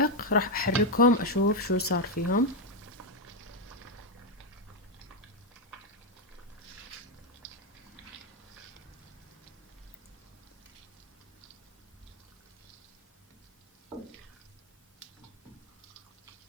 راح احركهم اشوف شو صار فيهم.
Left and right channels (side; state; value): both; normal; correlation 0.03